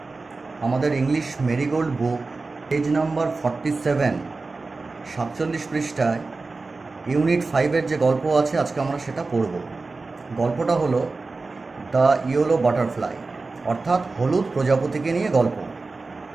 আমাদের English marigold বুক page number 47 47 পৃষ্ঠায় unit 5-এর যে গল্প আছে আজকে আমরা সেটা পড়ব। গল্পটা হলো দ্য ইয়েলো বাটারফ্লাই, অর্থাৎ হলুদ প্রজাপতিকে নিয়ে গল্প।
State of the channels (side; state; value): left; quieter; 3.8 dB